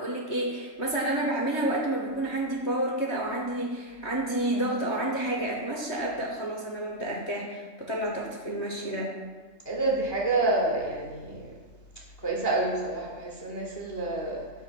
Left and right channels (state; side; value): late; right; 3.2 ms